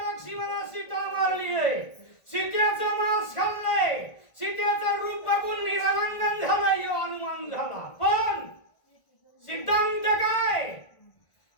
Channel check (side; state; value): right; late; 1.4 ms